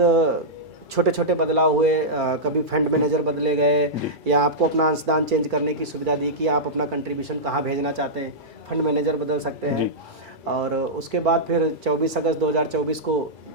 छोटे छोटे बदलाव हुए, कभी फंड मैनेजर बदले गए, या आपको अपना अंशदान चेंज करने की सुविधा दी कि आप अपना कंट्रीब्यूशन कहाँ भेजना चाहते हैं, फंड मैनेजर बदल सकते हैं। और उसके बाद फिर 24 अगस्त 2024 को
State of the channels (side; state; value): left; late; 2.3 ms